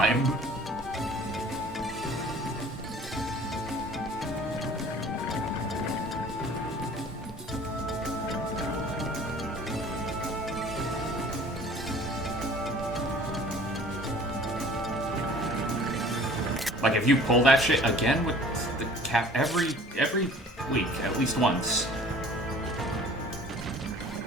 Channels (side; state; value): both; normal; correlation 0.49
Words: Like, if you pull that shit again with the cap every week, at least once.